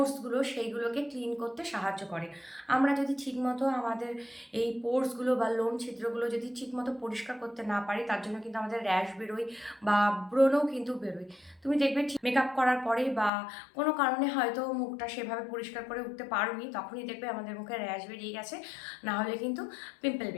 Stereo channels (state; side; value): drops out; right; at 13.3 s